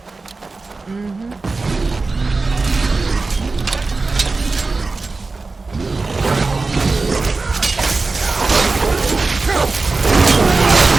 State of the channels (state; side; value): quieter; left; 3.8 dB